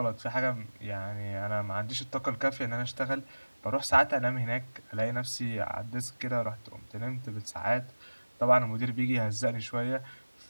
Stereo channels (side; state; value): both; inverted; correlation -1.00